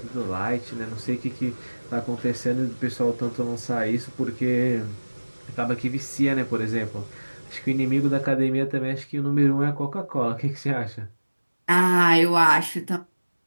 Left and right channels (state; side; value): inverted; both; correlation -1.00